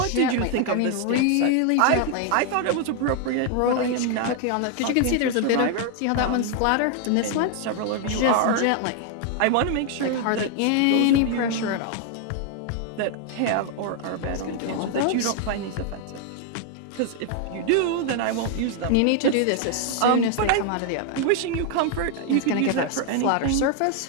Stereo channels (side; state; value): both; different; correlation 0.00